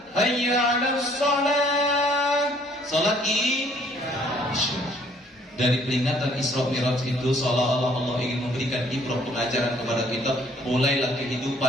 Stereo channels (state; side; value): normal; both; correlation 0.60